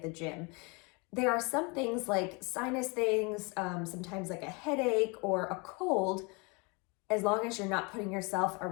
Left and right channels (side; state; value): right; quieter; 30.1 dB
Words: the gym. There are some things like sinus things, sometimes like a headache or a cold. As long as you're not putting yourself